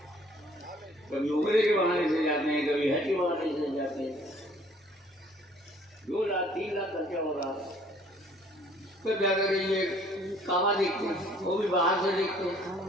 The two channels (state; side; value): normal; both; correlation 0.57